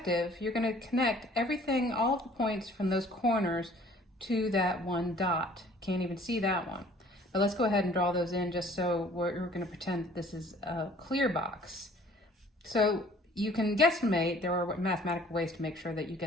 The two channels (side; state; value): both; normal; correlation 0.54